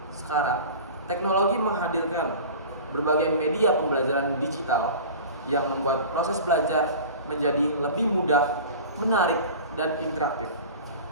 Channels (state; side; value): inverted; both; correlation -0.37